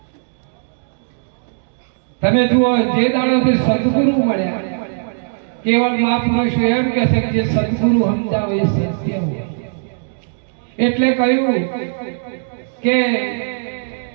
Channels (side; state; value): left; silent; digital silence